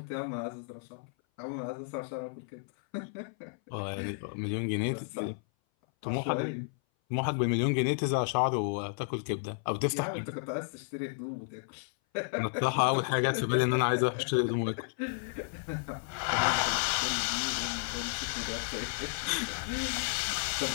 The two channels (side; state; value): right; silent; 56 dB below the other